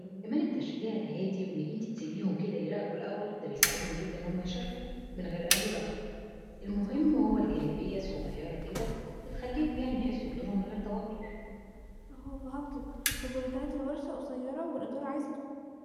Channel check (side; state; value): both; identical; correlation 1.00